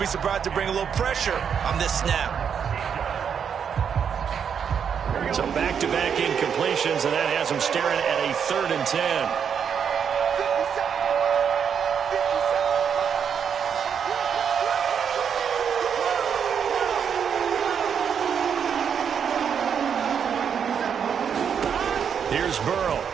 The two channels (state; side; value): quieter; left; 7.4 dB